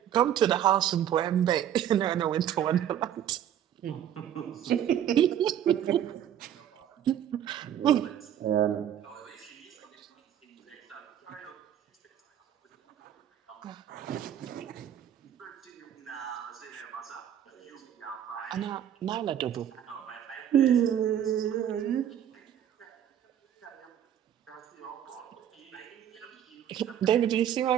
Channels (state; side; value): quieter; left; 10.3 dB